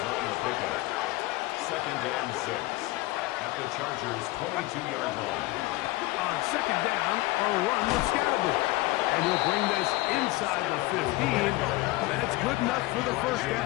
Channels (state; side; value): quieter; right; 20.1 dB